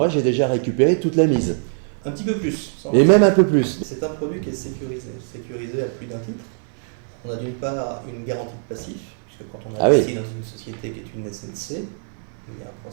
j'ai déjà récupéré toute la mise. Un petit peu plus. Et même un peu plus. C'est un produit qui est sécurisé à plus d'un titre. On a d'une part une garantie de passif, puisque quand on investit dans une société qui est une SNC, il y a un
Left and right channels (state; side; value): silent; left; 57 dB below the other